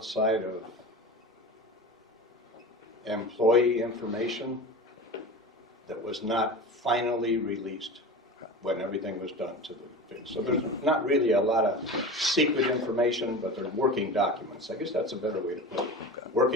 of employee information that was not finally released when everything was done to the thing. So there's not really a lot of secret information, but they're working documents. I guess that's a better way to put it.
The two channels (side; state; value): both; normal; correlation 0.31